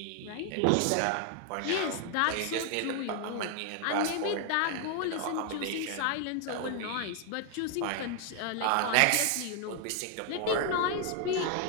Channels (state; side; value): different; both; correlation 0.00